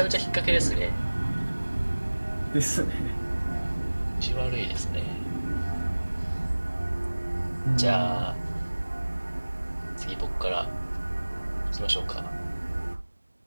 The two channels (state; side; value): inverted; both; correlation -1.00